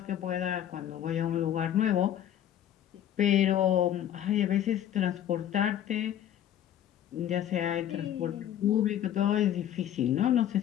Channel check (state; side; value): quieter; right; 10.9 dB